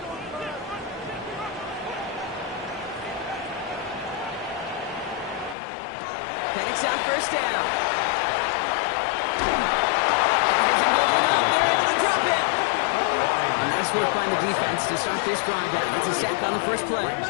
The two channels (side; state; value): right; drops out; at 5.6 s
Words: Penix out first down. Isn't holding up. They're able to drop it. Nice work by the defense to start this drive out. It's a sack on the first play.